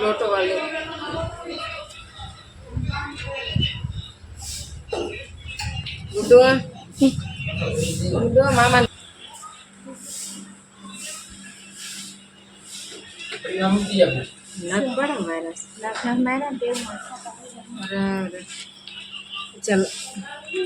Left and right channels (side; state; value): both; identical; correlation 1.00